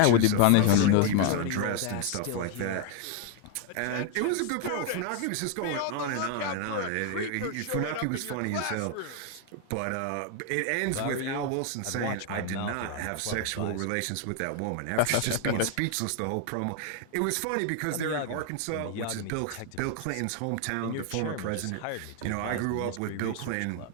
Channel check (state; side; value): different; both; correlation 0.00